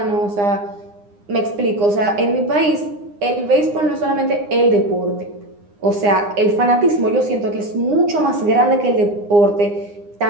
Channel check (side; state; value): left; late; 9.8 ms